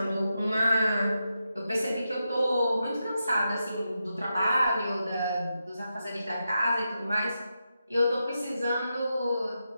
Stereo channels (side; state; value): both; inverted; correlation -0.87